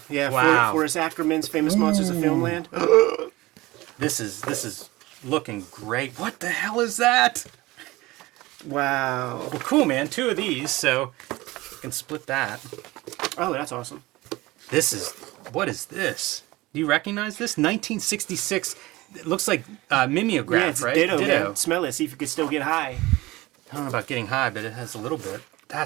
Wow. Forrest Ackerman's Famous Monsters of Filmland. This is looking great. What the hell is that? Wow. Well, cool, man. 2 of these, so you can split that. Oh, that's awesome. What is this? Do you recognize this? 1966. It looks like mimeograph, Yeah, it's right? ditto, man. Smell it. See if you could still get high. I don't know about getting high, but it has a little bit.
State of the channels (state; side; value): quieter; left; 20.0 dB